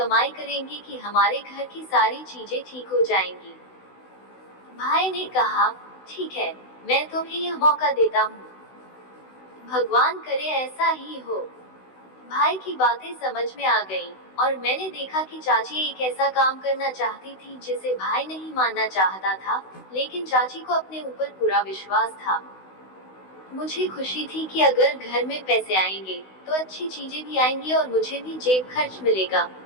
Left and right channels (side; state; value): right; late; 16 ms